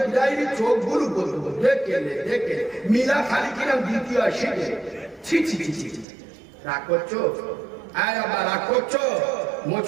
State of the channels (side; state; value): left; drops out; at 6.1 s